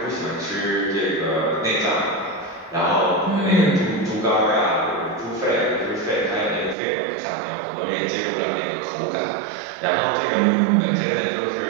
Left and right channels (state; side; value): drops out; left; at 6.8 s